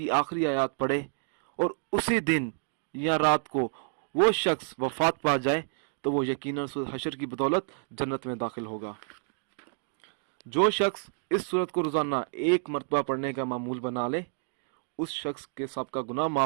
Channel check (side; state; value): left; silent; digital silence